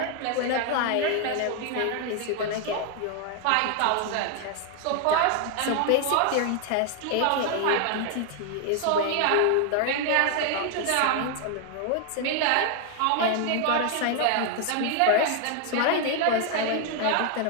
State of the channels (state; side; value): different; both; correlation 0.00